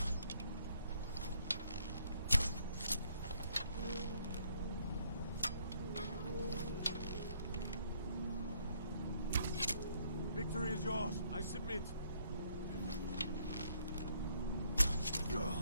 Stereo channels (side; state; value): both; inverted; correlation -0.67